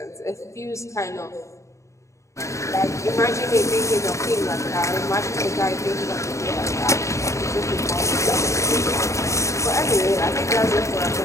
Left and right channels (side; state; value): right; late; 0.14 ms